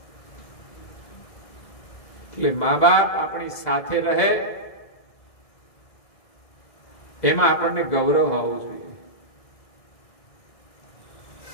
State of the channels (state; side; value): late; right; 2.0 ms